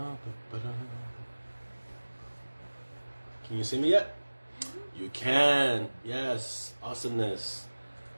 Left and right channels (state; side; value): inverted; both; correlation -1.00